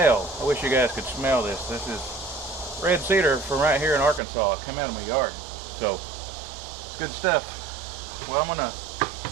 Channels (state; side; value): drops out; left; at 4.2 s